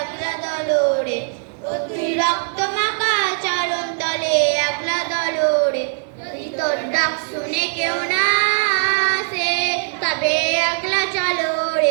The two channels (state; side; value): silent; left; digital silence